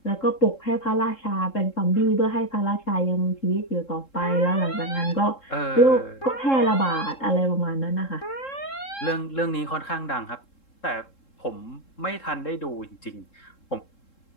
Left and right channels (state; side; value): late; right; 3.7 ms